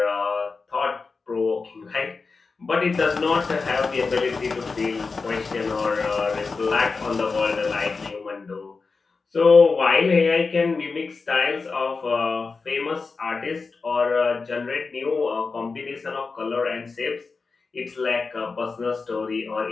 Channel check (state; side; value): quieter; right; 4.4 dB